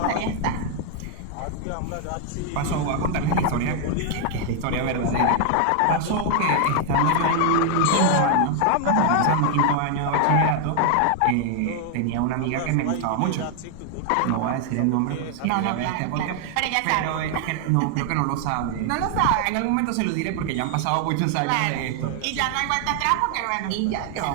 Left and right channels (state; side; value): different; both; correlation 0.00